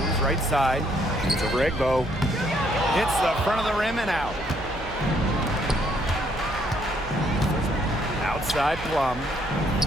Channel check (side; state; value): right; noise; hum, 12 dB below the sound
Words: right side. Shoots over Egbo. Hits the front of the rim and out. Outside Plum.